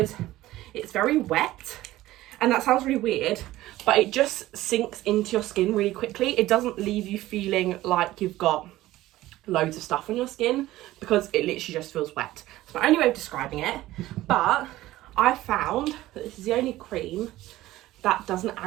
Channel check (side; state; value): left; quieter; 16.1 dB